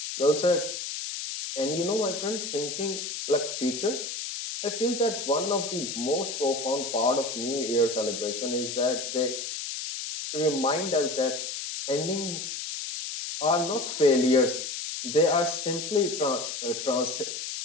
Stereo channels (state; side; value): noise; left; hiss, 5 dB below the sound